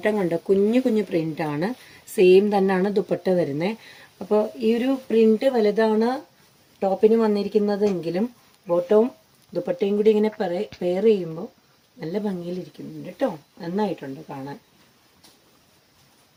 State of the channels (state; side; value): identical; both; correlation 1.00